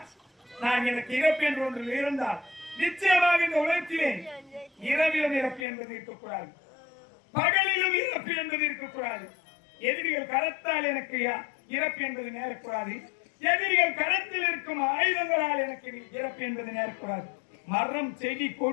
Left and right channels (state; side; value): drops out; right; at 5.7 s